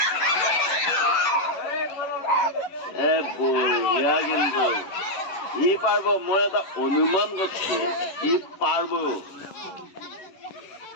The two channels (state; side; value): late; right; 11 ms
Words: বঢ়িয়া কিন্তু ই পারব মই এটা অনুমান করছি ই পারব